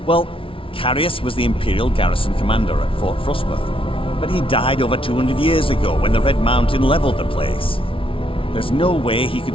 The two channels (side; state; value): right; late; 0.26 ms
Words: Well, Carius was the Imperial garrison commander at Fort Frostmoth, but he died over 200 years ago when the Red Mountain leveled the place. There's no way he